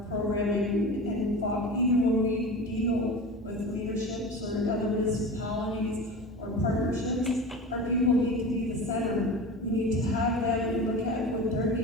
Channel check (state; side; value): normal; both; correlation 0.31